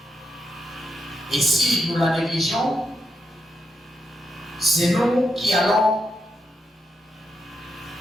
Et si nous la négligeons, c'est nous qui allons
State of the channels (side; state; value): both; normal; correlation 0.83